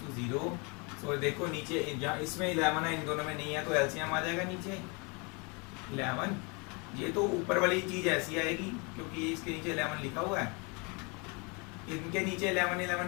to 0। सो देखो नीचे जहाँ इसमें 11 है, इन दोनों में नहीं है, तो एलसीएम आ जाएगा नीचे 11। ये तो ऊपर वाली चीज ऐसी आएगी क्योंकि इसके नीचे 11 लिखा हुआ है, इनके नीचे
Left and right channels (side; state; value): right; quieter; 31.1 dB